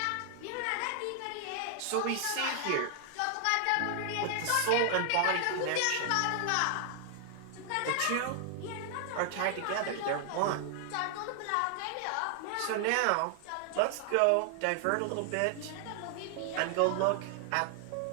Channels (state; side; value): different; both; correlation 0.00